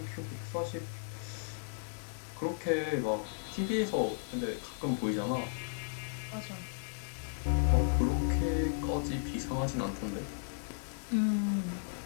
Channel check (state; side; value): silent; right; digital silence